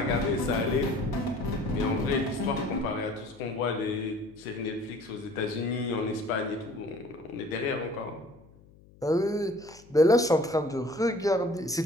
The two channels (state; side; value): noise; left; hum, 25 dB below the sound